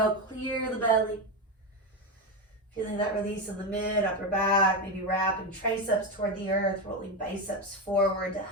clear the belly. Feeling that release in the mid, upper back, maybe wrapping triceps toward the earth, rolling biceps forward to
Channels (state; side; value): normal; both; correlation 0.12